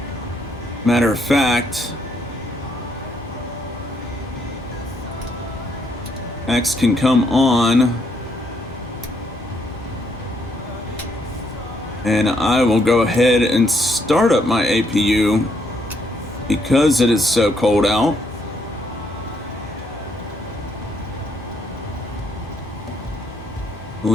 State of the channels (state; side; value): normal; both; correlation 0.73